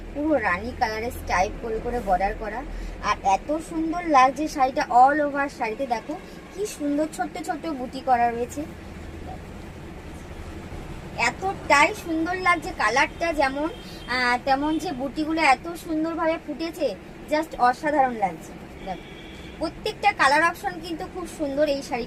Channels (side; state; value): both; identical; correlation 1.00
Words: পুরো রানী কালারের স্টাইপ করে করে বর্ডার করা, আর এত সুন্দর লাগছে শাড়িটা। অল ওভার শাড়িতে দেখো কি সুন্দর ছোট্ট ছোট্ট বুটি করা রয়েছে, এতটাই সুন্দর লাগছে। কালারটা যেমন তেমন যে বুটিগুলো এত সুন্দরভাবে ফুটেছে, জাস্ট অসাধারণ লাগছে। দেখো প্রত্যেকটা কালার অপশন কিন্তু খুব সুন্দর এই